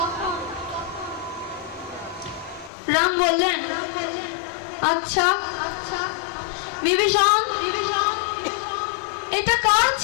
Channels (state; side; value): drops out; right; at 2.7 s